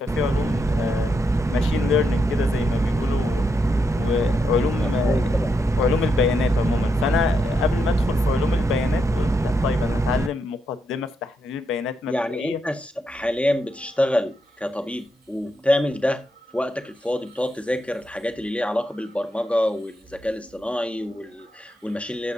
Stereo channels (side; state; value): both; normal; correlation 0.81